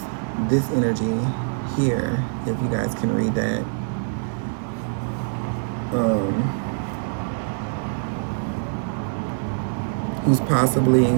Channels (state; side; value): silent; left; digital silence